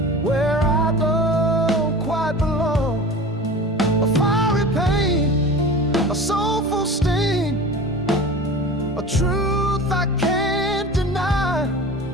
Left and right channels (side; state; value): both; normal; correlation 0.36